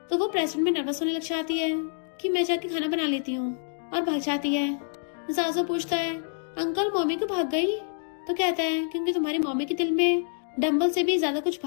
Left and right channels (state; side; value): silent; right; digital silence